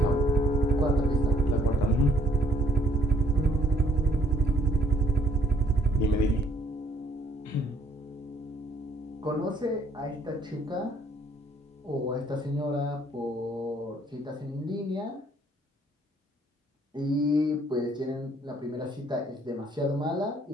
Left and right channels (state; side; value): normal; both; correlation 0.65